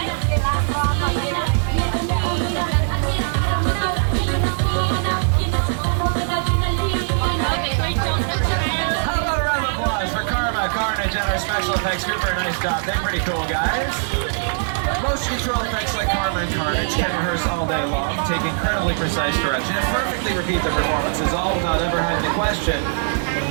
Special effects group for a nice job. They're pretty cool, guys. Motion control effects like Karma and Carnage can rehearse all day long, take incredibly precise direction, and perfectly repeat the performances, all without ever having to question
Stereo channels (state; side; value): silent; left; digital silence